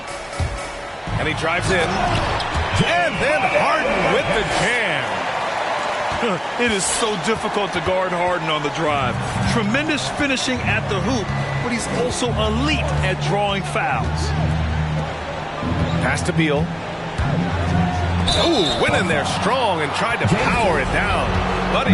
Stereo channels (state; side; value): identical; both; correlation 1.00